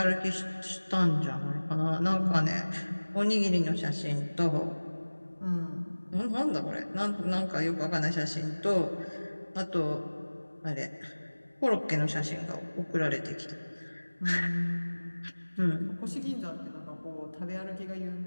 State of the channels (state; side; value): inverted; both; correlation -1.00